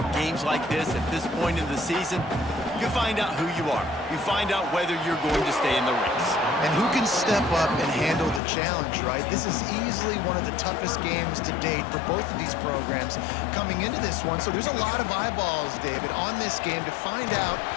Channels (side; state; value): right; drops out; at 8.4 s